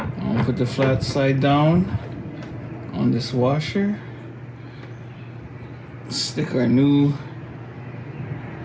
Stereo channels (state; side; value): identical; both; correlation 1.00